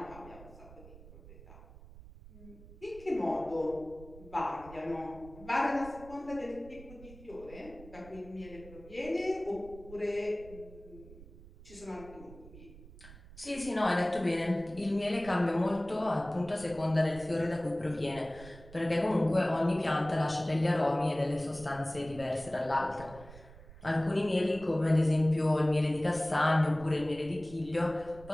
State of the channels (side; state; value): right; noise; rumble, 18 dB below the sound